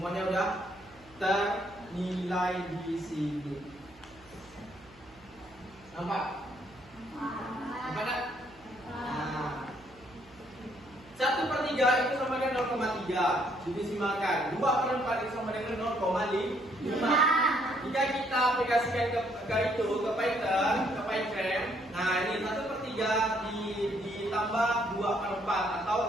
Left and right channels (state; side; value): noise; right; hum, 25 dB below the sound